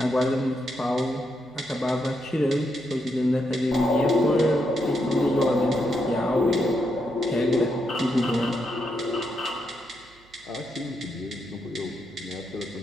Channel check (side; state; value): right; noise; hum, 29 dB below the sound